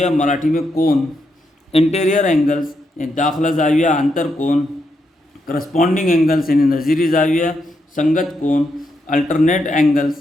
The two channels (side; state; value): both; normal; correlation 0.81